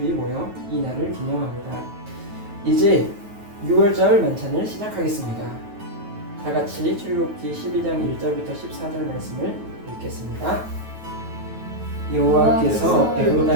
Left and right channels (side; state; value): left; late; 9.3 ms